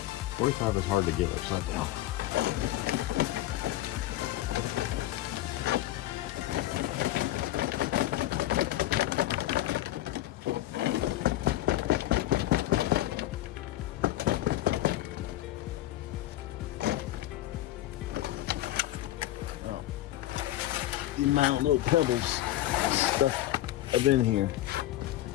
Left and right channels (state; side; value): quieter; right; 14.8 dB